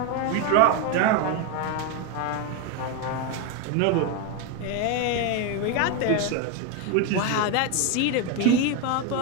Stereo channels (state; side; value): different; both; correlation 0.02